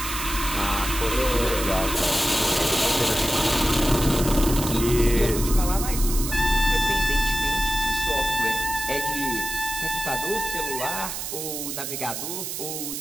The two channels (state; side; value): noise; right; hiss, 5 dB below the sound